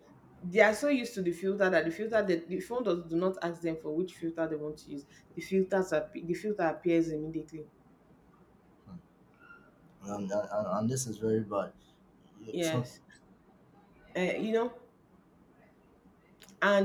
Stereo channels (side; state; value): both; identical; correlation 1.00